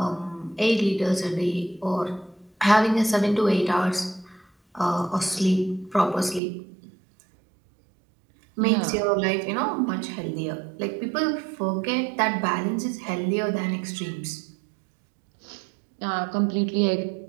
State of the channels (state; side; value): drops out; left; at 6.4 s